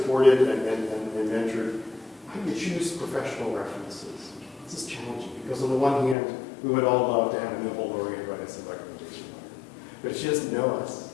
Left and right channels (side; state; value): right; drops out; at 6.2 s